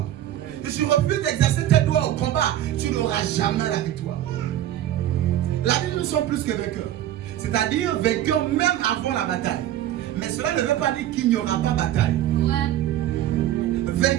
Si tu refuses d'exercer tes doigts au combat, tu n'auras jamais la victoire. La Bible, nous sommes plus que vainqueurs. C'est-à-dire vainqueurs même avant la bataille. Mais cela ne veut pas dire qu'il n'y aura pas bataille.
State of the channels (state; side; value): quieter; left; 12.5 dB